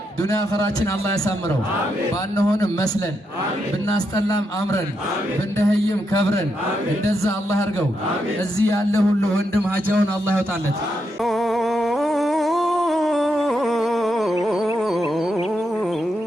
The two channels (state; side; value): normal; both; correlation 0.82